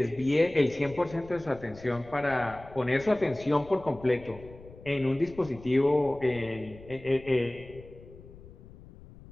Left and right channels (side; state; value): left; noise; rumble, 19 dB below the sound